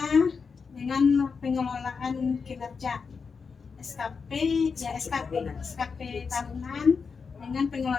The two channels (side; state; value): right; quieter; 5.4 dB